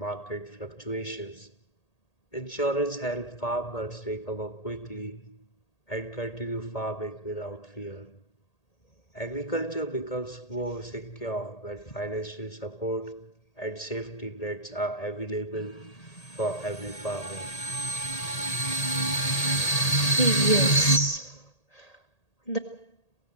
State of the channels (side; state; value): right; late; 1.8 ms